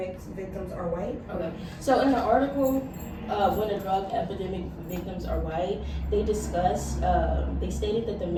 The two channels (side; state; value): both; identical; correlation 1.00